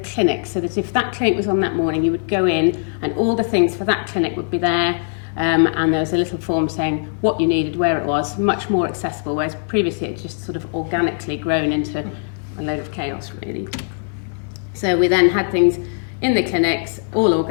so that if that clinic was on that morning, you would go in and all the things for that clinic would be there, and there was a little form saying what you needed, where it was, much more accessible, whereas previously it just sort of organically grown into a load of chaos, really. So we then had things in the clinics, all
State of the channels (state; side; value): silent; right; digital silence